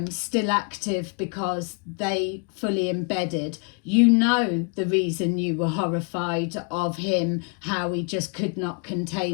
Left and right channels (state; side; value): quieter; right; 34.6 dB